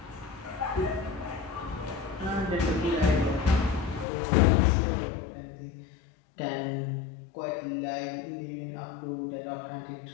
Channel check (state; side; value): drops out; right; at 4.0 s